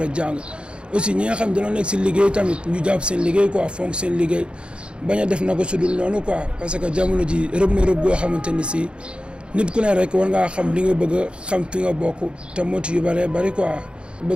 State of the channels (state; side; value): late; left; 0.055 ms